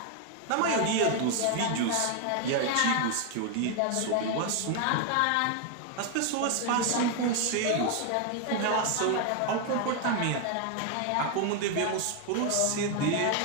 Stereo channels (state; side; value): different; both; correlation 0.00